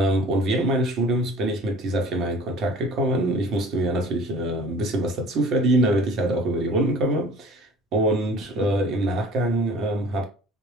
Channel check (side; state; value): both; normal; correlation 0.47